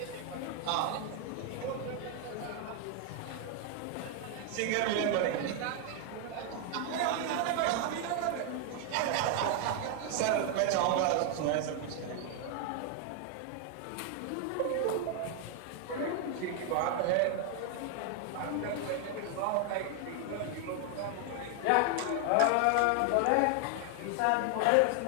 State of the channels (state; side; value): different; both; correlation 0.00